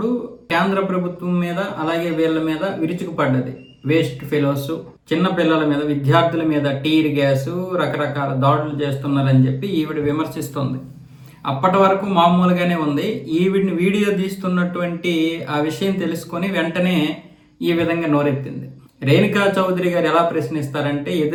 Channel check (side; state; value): both; identical; correlation 1.00